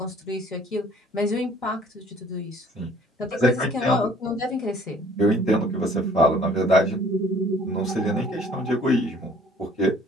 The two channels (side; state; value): both; normal; correlation 0.55